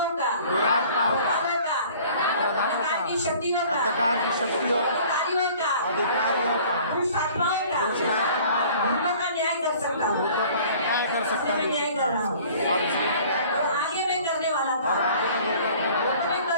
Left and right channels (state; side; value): inverted; both; correlation -0.50